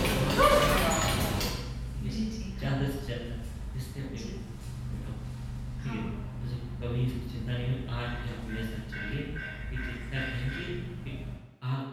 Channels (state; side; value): identical; both; correlation 1.00